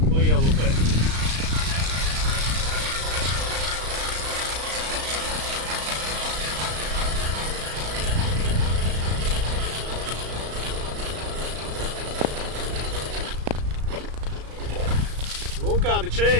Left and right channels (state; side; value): late; left; 35 ms